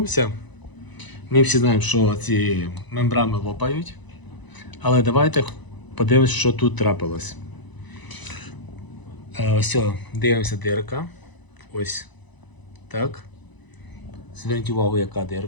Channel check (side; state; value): right; late; 1.0 ms